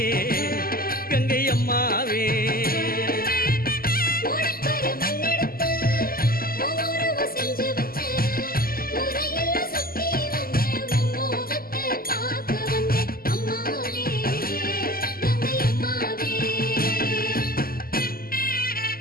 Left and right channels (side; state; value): right; late; 0.42 ms